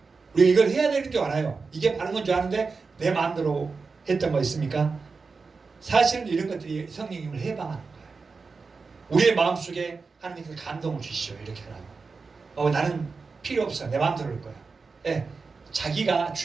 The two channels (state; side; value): quieter; left; 4.5 dB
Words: 우리가 이걸 해야 되는 줄 알아요. 이게 바른 건 줄 아는데 내 마음대로 했던 거 있습니까? 사실은 이런 것들이 성령님을 해방하는 거예요. 우리의 마음속에 하나님께서 감동을 주시죠. 이렇게 하라고. 나는 필요 없어. 내 마음대로 할 거야. 예, 자기가